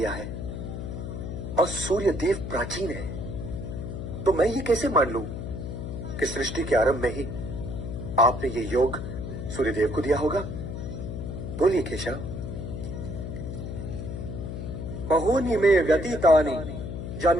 है और सूर्य देव प्राचीन है, तो मैं ये कैसे मान लूं कि सृष्टि के आरंभ में ही आपने ये योग सूर्यदेव को दिया होगा? बोलिए केशव। बहूनि मे व्यतीतानि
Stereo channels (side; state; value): left; noise; hum, 6 dB below the sound